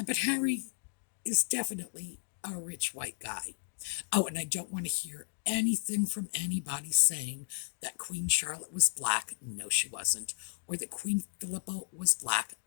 Harry is definitely a rich white guy. Oh, and I don't want to hear anything from anybody saying that Queen Charlotte was black. No, she wasn't. Or that Queen Philippa was black.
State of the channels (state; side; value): silent; right; digital silence